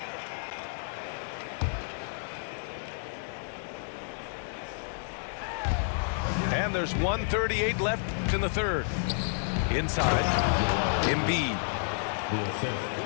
And there's 1:38 left in the 3rd. Inside, Embiid.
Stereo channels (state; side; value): silent; right; digital silence